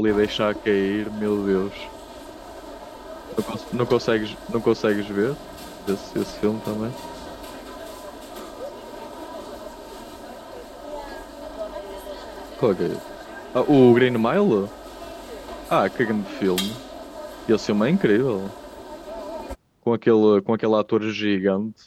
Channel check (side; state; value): both; identical; correlation 1.00